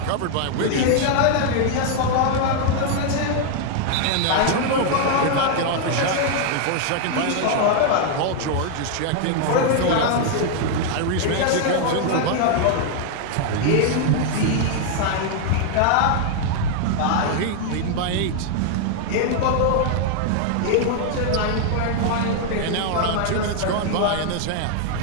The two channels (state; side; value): different; both; correlation 0.00